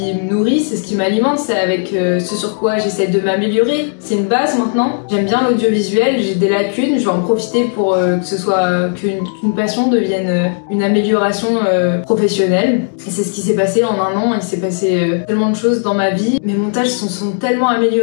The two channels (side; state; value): right; silent; digital silence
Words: me nourrit, c'est ce qui m'alimente, c'est avec ce sur quoi j'essaie de m'améliorer. C'est une base maintenant. J'aime bien l'audiovisuel, j'ai des lacunes, je vais en profiter pour que ce soit qu'une passion devienne une amélioration professionnelle. Et c'est ce qui s'est passé en un an. Il s'est passé tellement de choses dans ma vie. Mes montages sont tellement